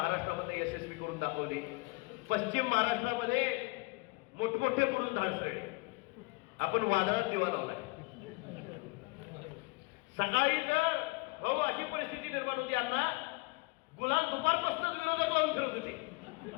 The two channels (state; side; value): quieter; right; 25.9 dB